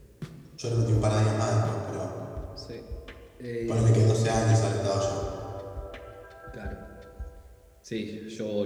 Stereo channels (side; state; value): both; identical; correlation 1.00